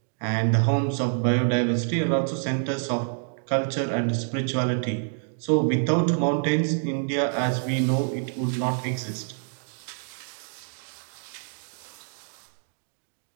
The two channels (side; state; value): left; silent; digital silence